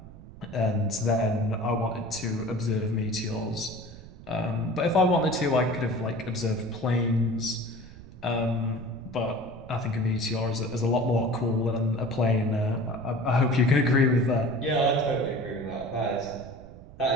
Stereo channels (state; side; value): noise; right; rumble, 18 dB below the sound